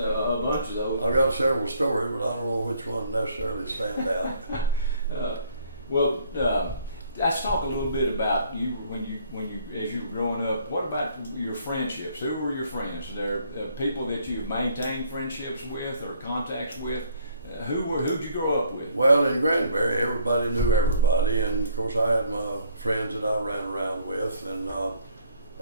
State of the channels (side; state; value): both; inverted; correlation -0.63